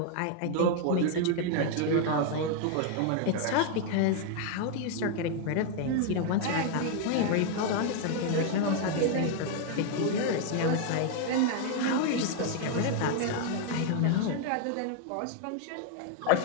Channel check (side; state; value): both; different; correlation 0.00